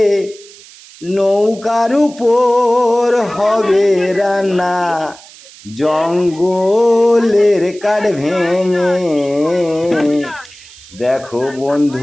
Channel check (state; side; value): noise; right; hiss, 21 dB below the sound